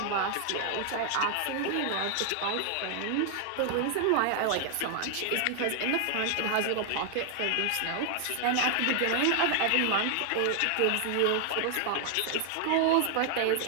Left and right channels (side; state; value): both; different; correlation 0.00